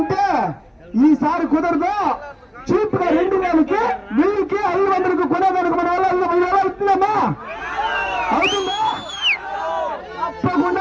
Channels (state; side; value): identical; both; correlation 1.00